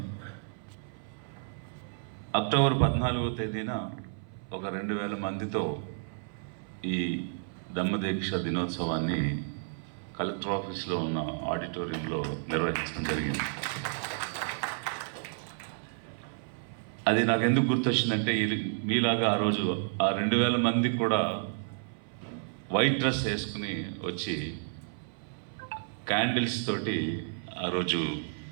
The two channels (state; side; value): silent; left; 57 dB below the other